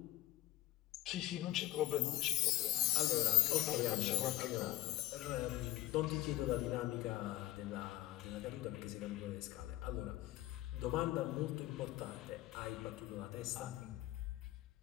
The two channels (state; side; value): quieter; right; 16.0 dB